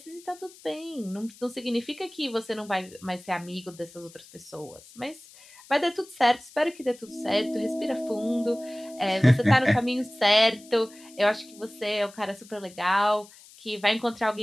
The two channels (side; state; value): left; noise; hiss, 22 dB below the sound